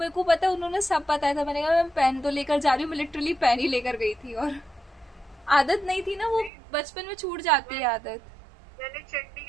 को पता है, उन्होंने सब बताया था। मैंने कहा मैं पेन तो लेकर जा रही हूँ, मैं लिटरली पेन ही लेकर गई थी, और आदत नहीं थी ना, वो बचपन में छूट जाती है आदत। मैंने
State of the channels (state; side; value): drops out; left; at 6.5 s